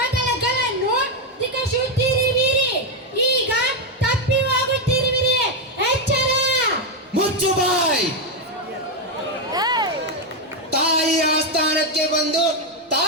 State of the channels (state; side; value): normal; both; correlation 0.05